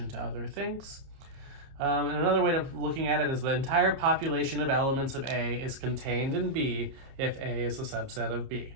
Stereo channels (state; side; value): late; left; 30 ms